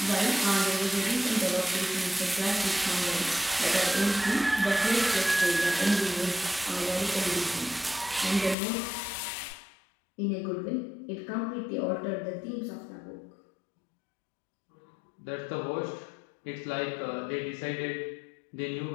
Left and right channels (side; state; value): right; drops out; at 8.6 s